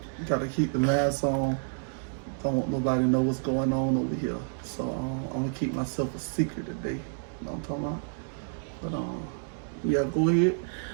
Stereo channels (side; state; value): left; silent; digital silence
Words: gotta keep the mask on. Don't want nobody to know what's going on over here. So I'm gonna keep myself a secret today. You know what I'm talking about? But yeah, go ahead.